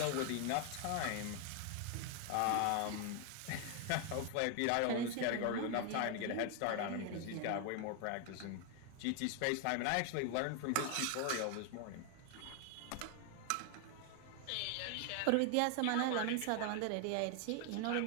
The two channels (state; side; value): different; both; correlation 0.01